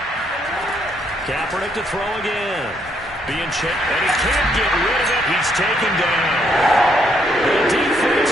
Kaepernick to throw again. Being checked, and he can't get rid of it. He's taken down. The defense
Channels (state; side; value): normal; both; correlation 0.72